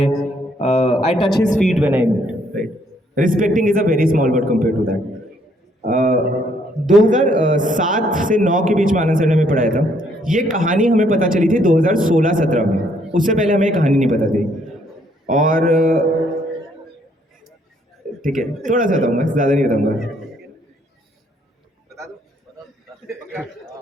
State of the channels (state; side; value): normal; both; correlation 0.68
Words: I touch his feet when I meet. Right, respecting is a very small word compared to that. 2007 से 9 के बीच में आनंद सर ने हमें पढ़ाया था. ये कहानी हमें पता चली थी 2016-17 में. उससे पहले हमें ये कहानी नहीं पता थी. और ठीक है, थोड़ा सा बताऊंगा, ज़्यादा नहीं बताऊंगा.